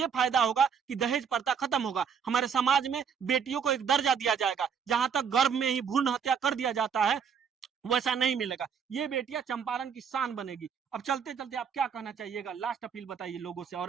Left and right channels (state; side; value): quieter; left; 7.0 dB